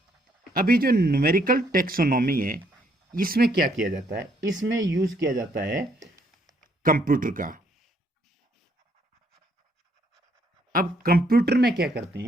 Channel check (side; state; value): both; normal; correlation 0.69